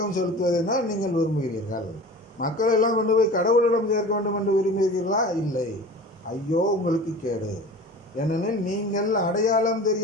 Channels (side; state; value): both; normal; correlation 0.37